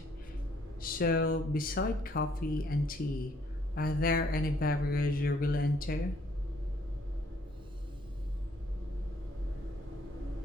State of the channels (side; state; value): both; normal; correlation 0.65